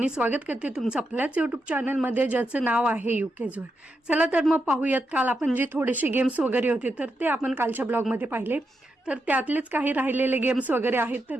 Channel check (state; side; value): normal; both; correlation 0.85